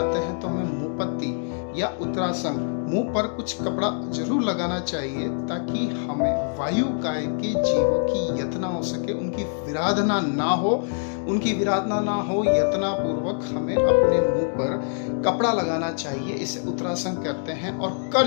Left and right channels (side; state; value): right; silent; digital silence